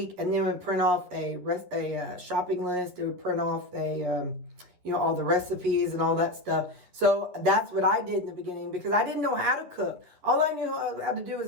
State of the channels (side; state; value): left; late; 11 ms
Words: And then it would print off a shopping list. It would print off all the recipes and all that stuff. So that's what I did in the beginning, because I didn't know how to cook. All I knew how to do was